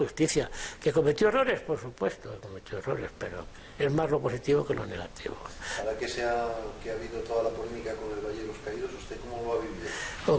¿Que cometió errores? Por supuesto, cometió errores, pero es más lo positivo que lo negativo. Ahora que ha habido toda la polémica con el Valle de los Caídos, ¿usted cómo lo ha vivido? O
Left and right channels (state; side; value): identical; both; correlation 1.00